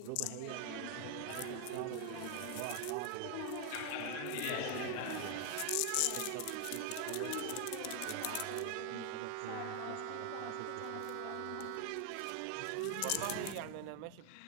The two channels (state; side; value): different; both; correlation 0.00